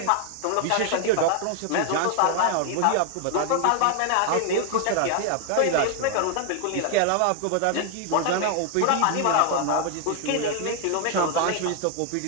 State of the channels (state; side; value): different; both; correlation 0.00